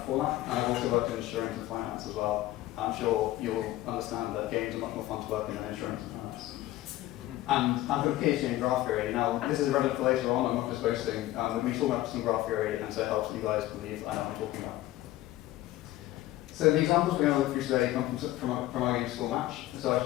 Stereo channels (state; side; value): quieter; right; 15.7 dB